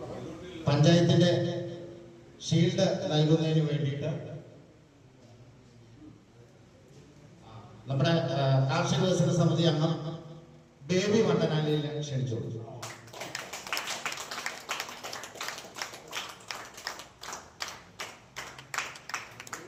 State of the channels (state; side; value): identical; both; correlation 1.00